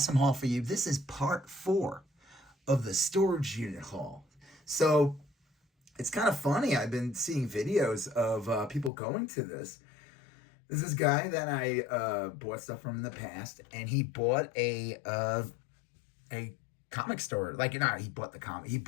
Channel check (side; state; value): right; drops out; at 8.9 s